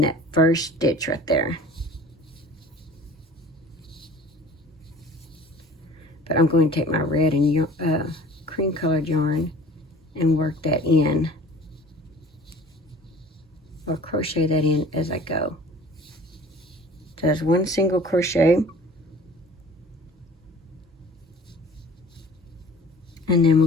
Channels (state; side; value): normal; both; correlation 0.45